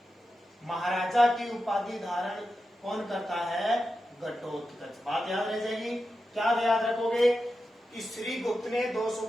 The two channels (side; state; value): both; normal; correlation 0.90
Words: महाराजा की उपाधि धारण कौन करता है? घटोत्कच। बात याद रह जाएगी। क्या याद रखोगे? इस श्री गुप्त ने